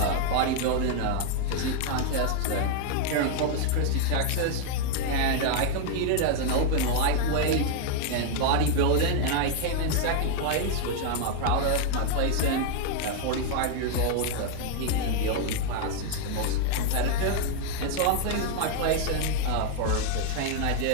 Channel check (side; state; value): both; different; correlation 0.00